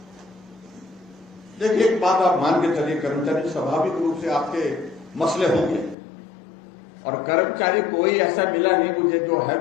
देखिए, एक बात आप मान के चलिए, कर्मचारी स्वाभाविक रूप से आपके मसले होंगे, और कर्मचारी कोई ऐसा मिला नहीं मुझे जो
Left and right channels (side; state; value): right; drops out; at 6.0 s